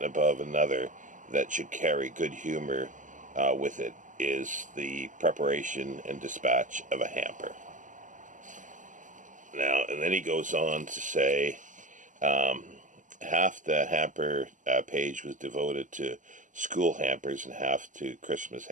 above another that should carry good humor with it, is the preparation and dispatch of a hamper. Now, and then he goes on to say, half the hamper page was devoted to school hampers and half to Christmas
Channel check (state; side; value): late; left; 0.37 ms